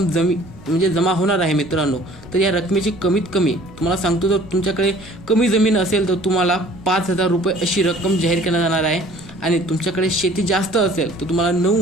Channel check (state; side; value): noise; right; rumble, 22 dB below the sound